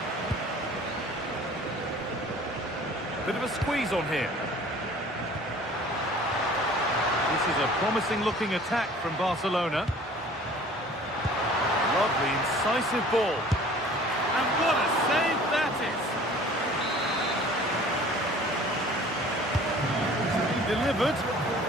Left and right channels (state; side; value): normal; both; correlation 0.48